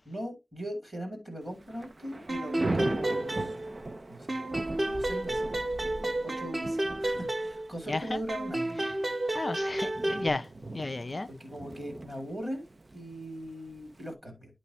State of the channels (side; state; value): both; normal; correlation 0.96